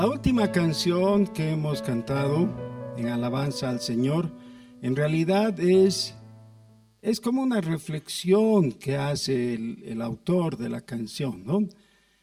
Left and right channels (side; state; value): both; identical; correlation 1.00